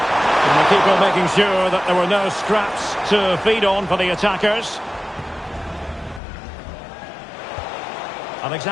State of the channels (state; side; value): drops out; right; at 6.2 s